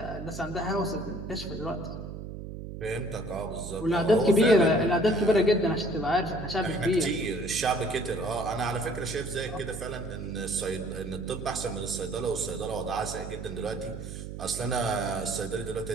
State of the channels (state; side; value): noise; right; hum, 9 dB below the sound